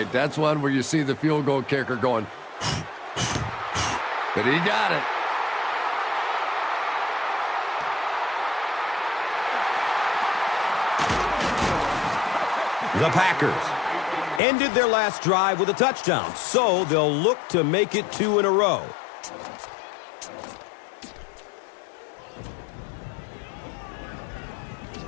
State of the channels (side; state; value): right; drops out; at 14.4 s